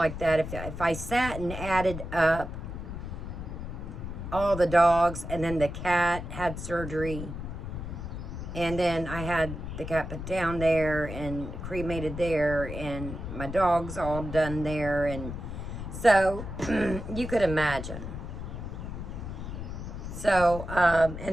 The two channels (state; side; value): noise; left; rumble, 7 dB below the sound